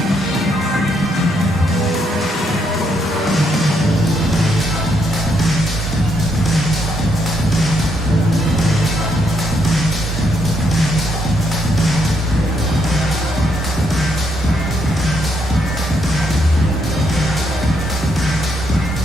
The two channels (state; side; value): normal; both; correlation 0.75